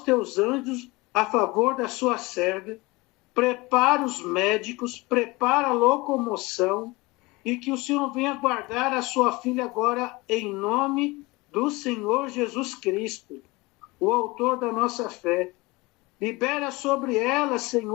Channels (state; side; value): quieter; right; 23.1 dB